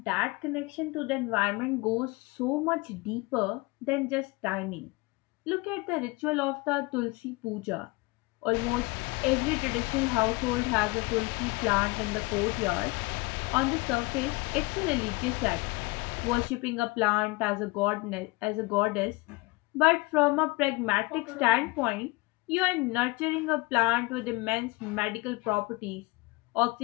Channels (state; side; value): quieter; right; 24.6 dB